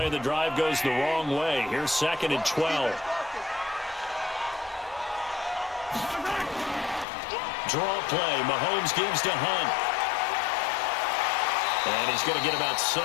of the drive goes the wrong way. Here's 2nd and 12. Draw play. Mahomes gives to Hunt. And he's going to get about 7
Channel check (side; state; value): right; drops out; at 7.1 s